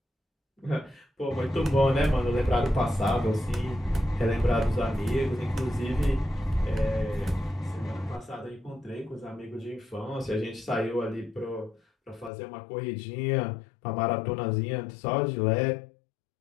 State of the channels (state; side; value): drops out; right; at 12.3 s